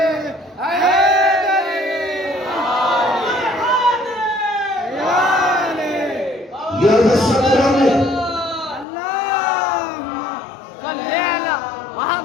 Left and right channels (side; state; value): right; drops out; at 8.8 s